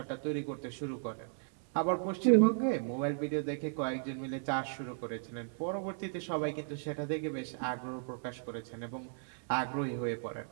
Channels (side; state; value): left; silent; 54 dB below the other